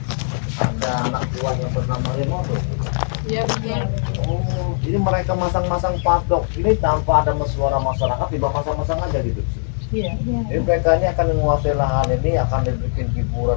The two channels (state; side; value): silent; right; digital silence